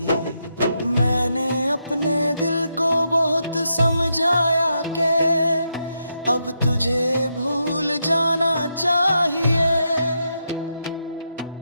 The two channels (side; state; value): both; inverted; correlation -0.82